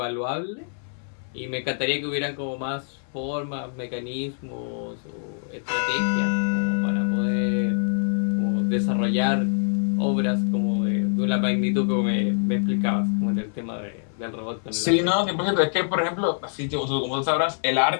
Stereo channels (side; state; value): right; silent; 62 dB below the other